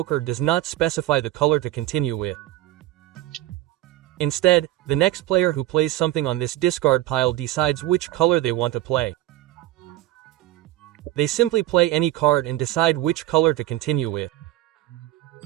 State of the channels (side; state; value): left; quieter; 15.5 dB